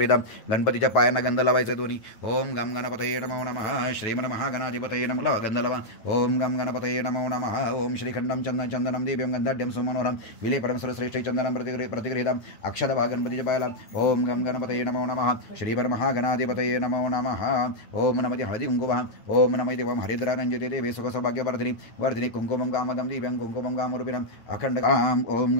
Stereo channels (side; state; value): right; late; 9.3 ms